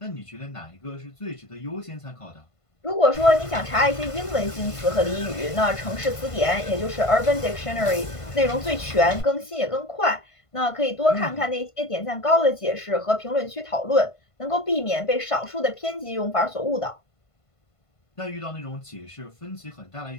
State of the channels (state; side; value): late; right; 1.5 ms